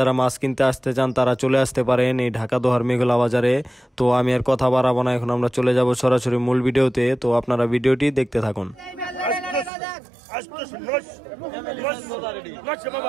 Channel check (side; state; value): left; drops out; at 9.7 s